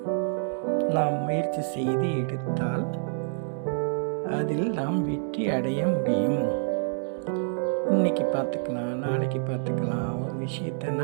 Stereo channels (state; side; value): silent; left; digital silence